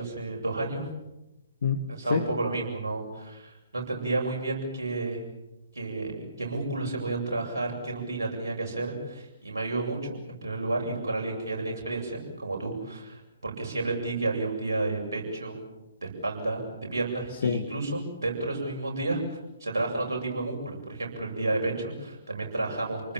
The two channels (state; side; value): inverted; both; correlation -0.71